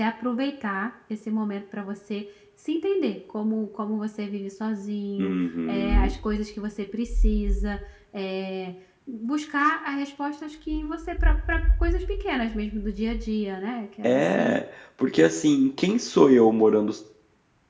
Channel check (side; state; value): both; identical; correlation 1.00